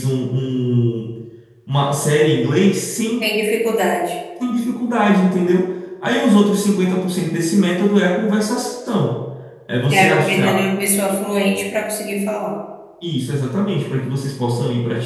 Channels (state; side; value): identical; both; correlation 1.00